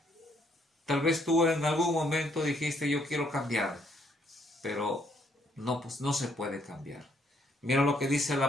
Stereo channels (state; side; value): normal; both; correlation 0.69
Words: Tal vez tú en algún momento dijiste, yo quiero cambiar. pero no, pues no se puede cambiar. Mira lo que dice